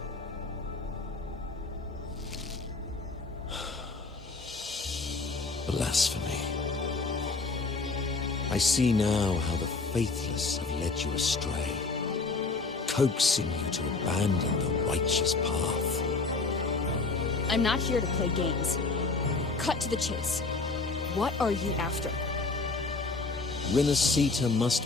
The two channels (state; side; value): quieter; right; 3.8 dB